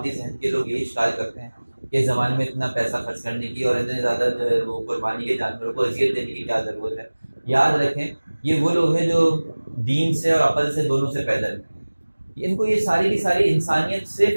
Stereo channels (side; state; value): both; inverted; correlation -1.00